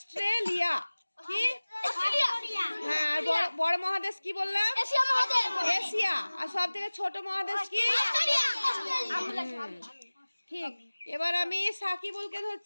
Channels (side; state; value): both; inverted; correlation -1.00